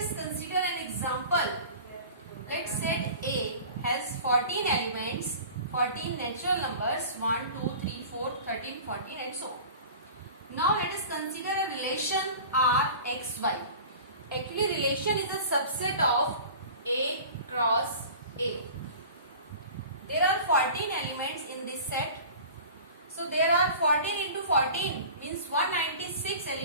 consider an example. Let's set A has 14 elements, 14 natural numbers, 1, 2, 3, 4, 13, 14 and so on. Now let us consider a relation Rxy. Actually, relation is a subset of A cross A. There are 14 elements in this set. So there are 14 into 14 means 196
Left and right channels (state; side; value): inverted; both; correlation -0.40